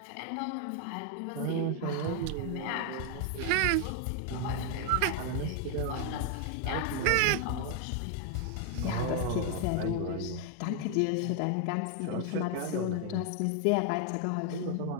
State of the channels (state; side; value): different; both; correlation 0.00